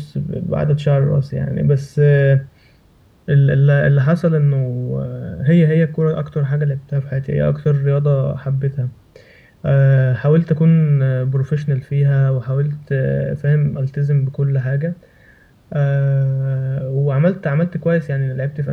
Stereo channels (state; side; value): identical; both; correlation 1.00